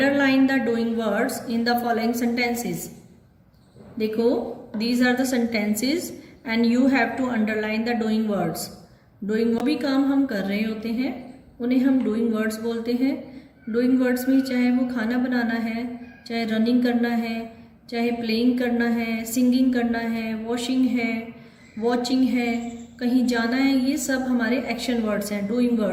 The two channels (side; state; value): both; identical; correlation 1.00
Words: the doing words in the following sentences. देखो, these are the sentences and you have to underline the doing words. Doing भी काम हम कर रहे होते हैं, उन्हें हम डूइंग वर्ड्स बोलते हैं। डूइंग वर्ड्स में चाहे वो खाना बनाना है, चाहे रनिंग करना है, चाहे प्लेइंग करना है, सिंगिंग करना है, वॉशिंग है, वॉचिंग है, कहीं जाना है, ये सब हमारे एक्शन वर्ड्स हैं, डूइंग